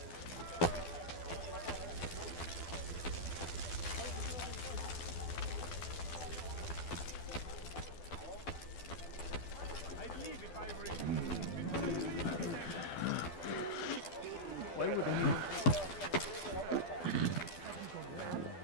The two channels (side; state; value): right; late; 12 ms